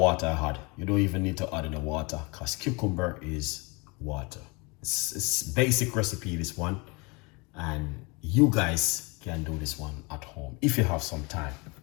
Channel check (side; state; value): right; quieter; 28.6 dB